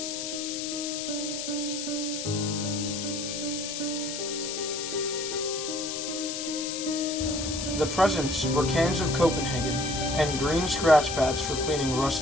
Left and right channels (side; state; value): left; noise; hiss, 5 dB below the sound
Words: The presents were cans of Copenhagen and green scratch pads for cleaning